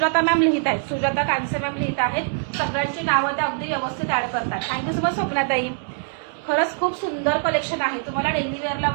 मॅम लिहित आहेत, सुजाता कांसे मॅम लिहित आहेत. सगळ्यांची नावं त्या अगदी व्यवस्थित ऍड करतात. थँक्यू सो मच स्वप्नाताई. खरंच खूप सुंदर कलेक्शन आहे. तुम्हाला डेली वेअरला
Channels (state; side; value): silent; left; 63 dB below the other